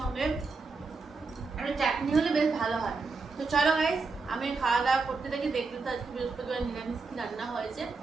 একটু চাটনি হলে বেশ ভালো হয়। তো চলো গাইস, আমি খাওয়া দাওয়া করতে থাকি, দেখতে তো আজকে বৃহস্পতিবার নিরামিষ কি রান্না হয়েছে,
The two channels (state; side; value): quieter; left; 4.1 dB